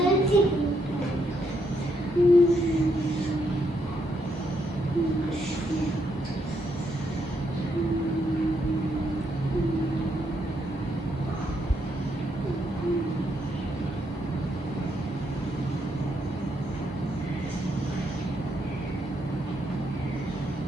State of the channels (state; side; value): normal; both; correlation 0.76